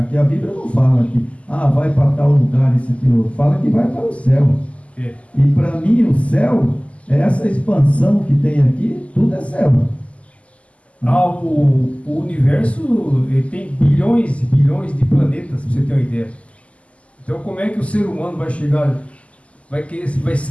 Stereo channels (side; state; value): right; late; 0.064 ms